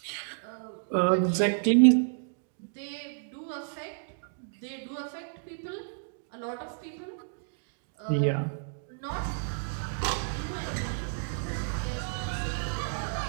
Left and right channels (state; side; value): silent; left; digital silence